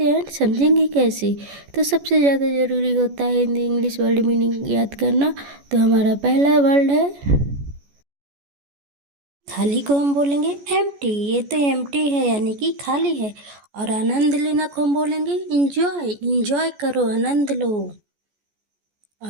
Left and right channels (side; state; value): left; late; 14 ms